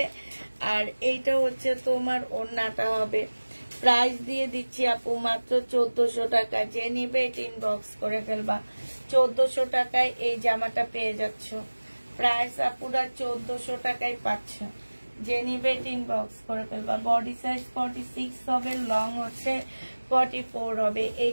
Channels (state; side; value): inverted; both; correlation -1.00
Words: আর এইটা হচ্ছে তোমার ওড়নাটা হবে। প্রাইস দিয়ে দিচ্ছি আপু মাত্র 1400 টাকা। যে নিবে এটা ইনবক্স করে ফেলবা। 1400 টাকায় এই জামাটা পেয়ে যাচ্ছ। প্রাইস আপুরা 1400 টাকায় পাচ্ছ। যে নিবে এটা ইনবক্স করে ফেলবা। বডি সাইজ 46 হবে, লং হচ্ছে 44 হবে।